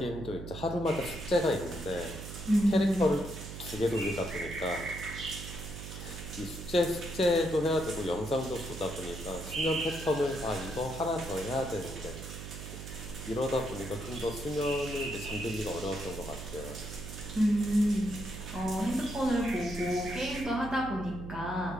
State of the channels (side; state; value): right; noise; hum, 9 dB below the sound